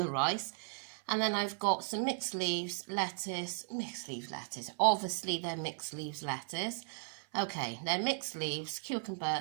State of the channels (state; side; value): silent; left; 54 dB below the other